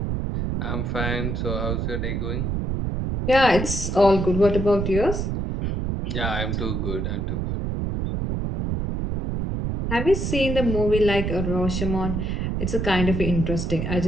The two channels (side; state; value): right; noise; rumble, 1 dB below the sound